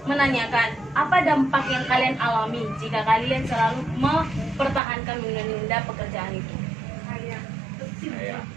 menanyakan apa dampak yang kalian alami jika kalian selalu mempertahankan menunda pekerjaan itu. Saya.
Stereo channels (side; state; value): left; drops out; at 4.8 s